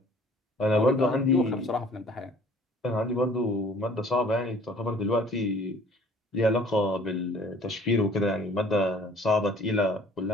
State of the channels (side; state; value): both; normal; correlation 0.53